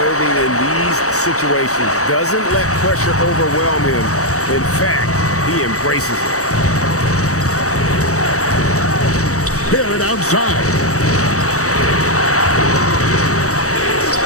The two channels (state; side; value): late; right; 0.65 ms